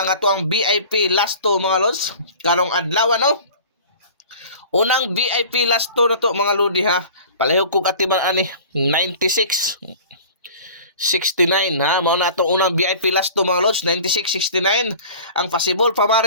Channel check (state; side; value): inverted; both; correlation -0.42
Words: ang atoang VIP last to mga lods. Karong adlaw, no. Unang VIP last to na to mga lodi, ha. Palihog kog atiman ani 96 69, ha. Mao na itong unang VIP last to mga lods, 96-69. Ang possible